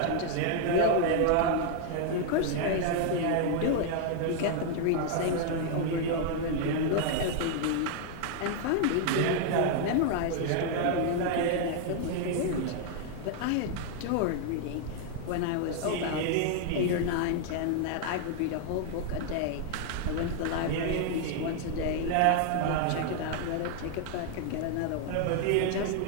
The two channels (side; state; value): both; different; correlation 0.00